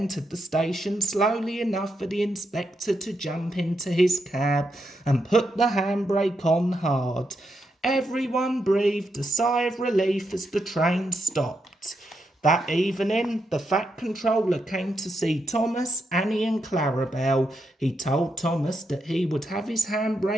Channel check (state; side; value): normal; both; correlation 0.83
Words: the station slowly enough for the inspector to jump into his cab and put the handbrake on hard. Everyone breathed a sigh of relief as the train stopped. That evening, the Fat Controller came to see Thomas, Annie and Clarabel. He told Thomas that he would have his